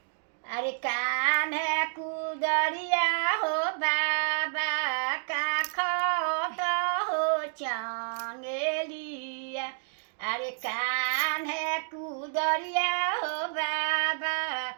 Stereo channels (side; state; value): left; silent; digital silence